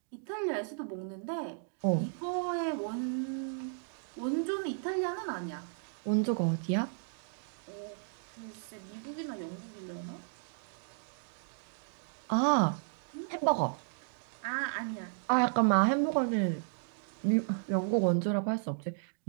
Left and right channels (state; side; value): silent; left; digital silence